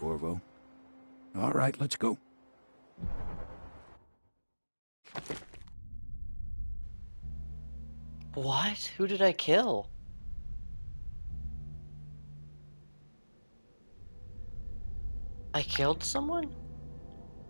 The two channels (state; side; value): inverted; both; correlation -1.00